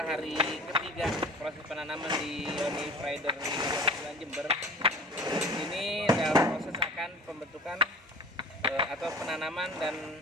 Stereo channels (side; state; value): both; normal; correlation 0.42